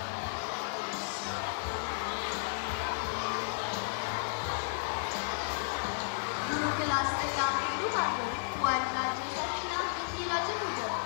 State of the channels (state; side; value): silent; right; digital silence